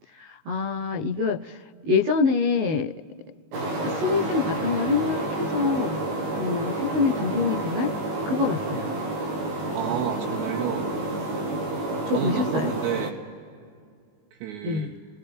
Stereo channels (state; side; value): late; left; 19 ms